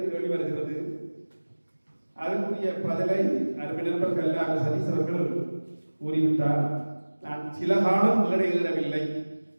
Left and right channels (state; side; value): inverted; both; correlation -1.00